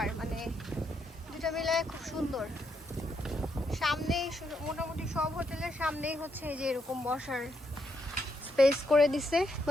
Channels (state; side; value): normal; both; correlation 0.78